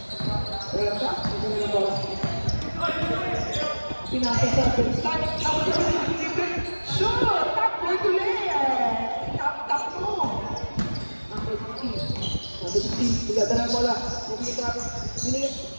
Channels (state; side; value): inverted; both; correlation -1.00